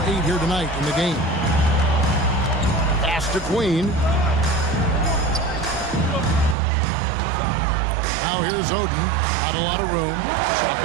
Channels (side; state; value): left; drops out; at 6.6 s